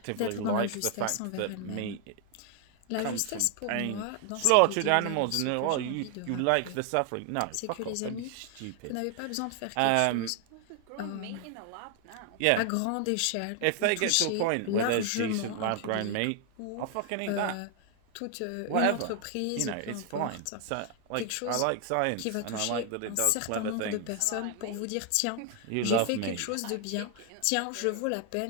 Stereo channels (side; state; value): both; different; correlation 0.00